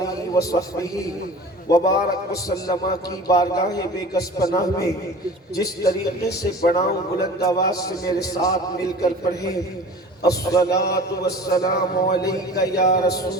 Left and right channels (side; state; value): both; normal; correlation 0.40